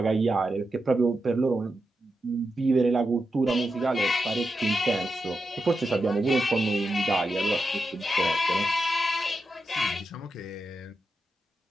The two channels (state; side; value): normal; both; correlation 0.87